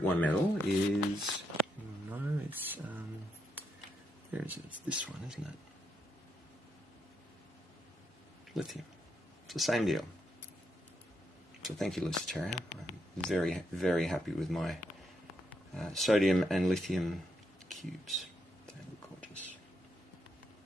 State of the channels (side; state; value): both; normal; correlation 0.80